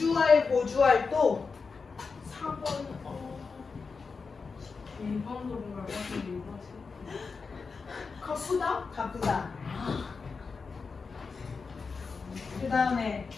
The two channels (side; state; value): right; quieter; 4.8 dB